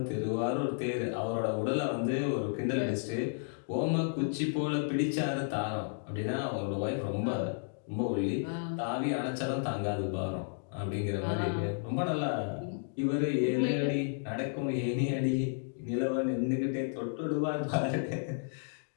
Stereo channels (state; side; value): silent; right; digital silence